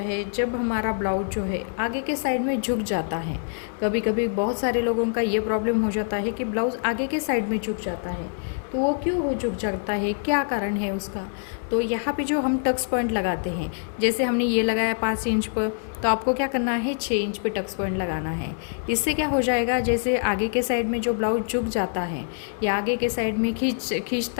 जब हमारा ब्लाउज जो है आगे के साइड में झुक जाता है, कभी कभी बहुत सारे लोगों का ये प्रॉब्लम हो जाता है कि ब्लाउज़ आगे के साइड में झुक जाता है। तो वो क्यों हो झुक जाता है, क्या कारण है उसका, तो यहाँ पे जो हम टक्स पॉइंट लगाते हैं, जैसे हमने ये लगाया 5 इंच पर, तो आपको क्या करना है 6 इंच पे टक्स पॉइंट लगाना है। इससे क्या हो जाएगा, जैसे आगे के साइड में जो ब्लाउज झुक जाता है या आगे के साइड में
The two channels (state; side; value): silent; right; digital silence